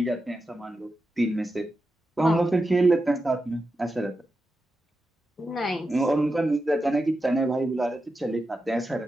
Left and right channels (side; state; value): both; normal; correlation 0.89